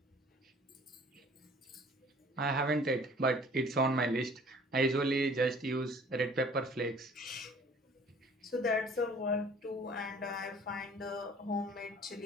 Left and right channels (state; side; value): normal; both; correlation 0.51